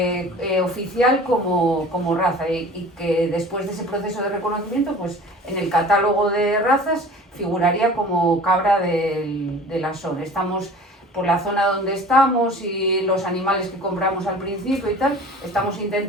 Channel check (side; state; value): both; normal; correlation 0.43